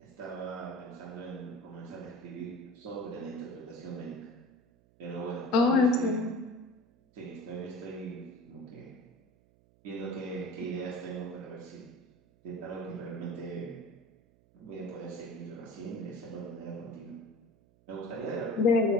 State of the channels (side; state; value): right; noise; hum, 30 dB below the sound